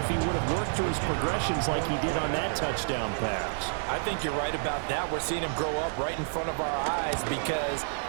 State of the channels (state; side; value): silent; left; 58 dB below the other